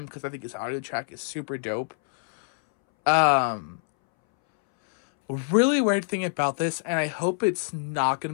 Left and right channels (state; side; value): silent; right; 61 dB below the other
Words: because I think his audio track is super dope. Really weird thing about this, and I hope it's not going